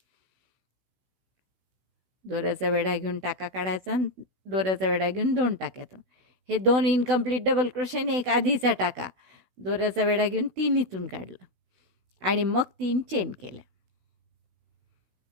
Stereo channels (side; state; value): left; late; 16 ms